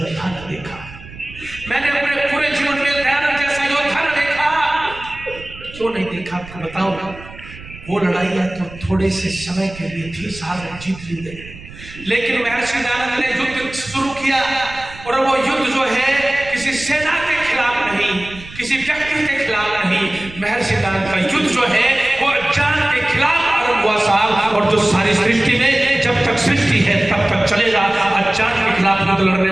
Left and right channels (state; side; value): noise; right; rumble, 17 dB below the sound